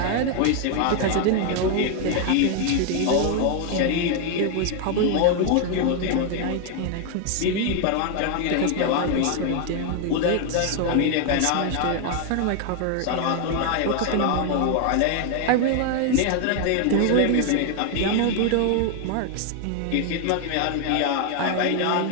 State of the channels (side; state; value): both; different; correlation 0.00